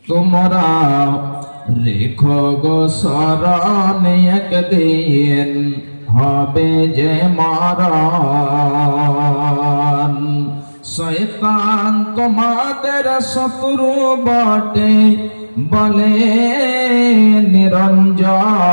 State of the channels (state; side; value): inverted; both; correlation -1.00